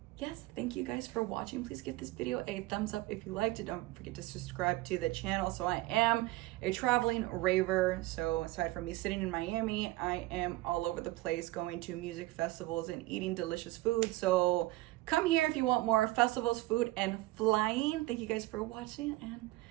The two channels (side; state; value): left; quieter; 18.9 dB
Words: yes, thank you guys for watching. Please give this video a thumbs up if you liked it. Don't forget to subscribe to the channel. So I am a traveling raver. So aside from me sitting in Miami, I am all over the place going to music festivals and eating delicious food. So come here if you want more festivals, food, and flying. Thank you guys for watching, and